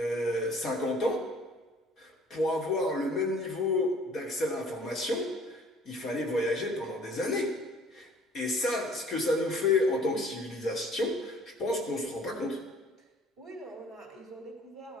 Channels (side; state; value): both; normal; correlation 0.54